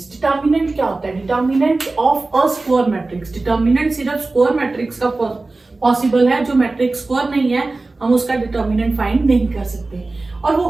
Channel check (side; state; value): left; quieter; 3.3 dB